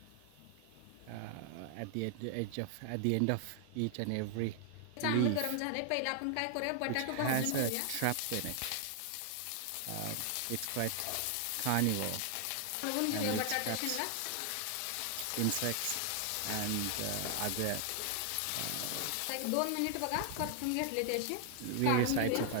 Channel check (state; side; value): different; both; correlation 0.00